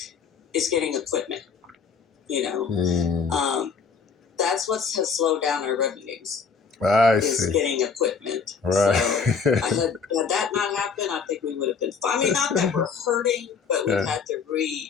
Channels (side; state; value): right; quieter; 5.7 dB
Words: is getting equipment. You know, Mm, that's what has slowed down our revenues I is see. getting equipment. Right. So had that not happened, I think we would have been fine. I mean, not that we're hurting, but we've Yeah. had to